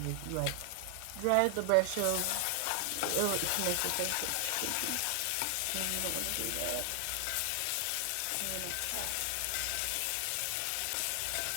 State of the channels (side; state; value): both; different; correlation 0.00